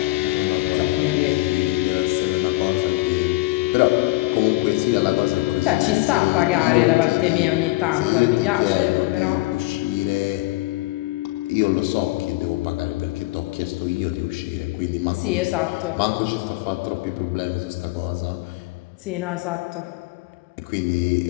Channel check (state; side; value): quieter; right; 20.7 dB